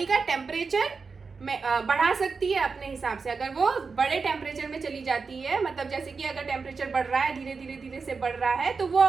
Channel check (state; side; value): quieter; left; 4.8 dB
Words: का टेम्परेचर में बढ़ा सकती है अपने हिसाब से। अगर वो बड़े टेम्परेचर में चली जाती है, मतलब जैसे कि अगर टेम्परेचर बढ़ रहा है, धीरे धीरे धीरे से बढ़ रहा है, तो वो